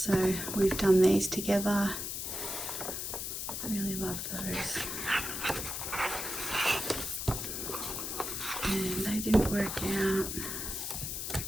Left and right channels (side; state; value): left; noise; hiss, 4 dB below the sound